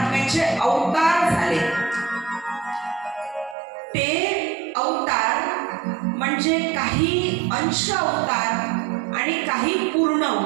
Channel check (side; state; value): left; drops out; at 3.6 s